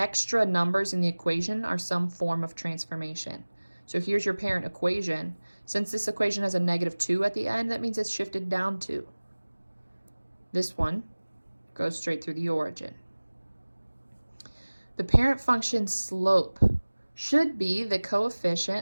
numbers in the equation are some form of transformation. So here's your parent equation. Since this equation has a -2 at the end, that means it's shifted down 2. This one goes straight through the origin. The parent function slope should be the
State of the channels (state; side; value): inverted; both; correlation -1.00